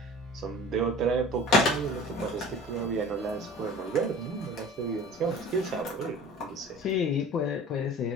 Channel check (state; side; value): normal; both; correlation 0.42